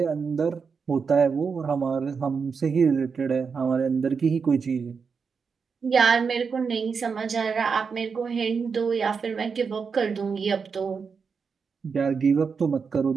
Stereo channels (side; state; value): left; quieter; 5.6 dB